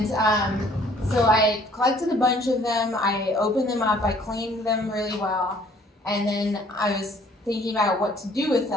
so I collected a bunch of them, I opened them up, I cleaned them really well, and then I was thinking about what to do with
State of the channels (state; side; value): normal; both; correlation 0.58